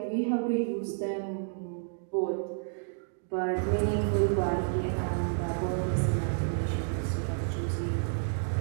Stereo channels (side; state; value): left; silent; digital silence